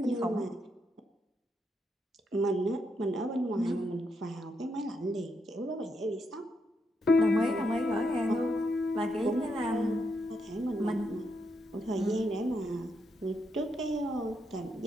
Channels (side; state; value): both; normal; correlation 0.80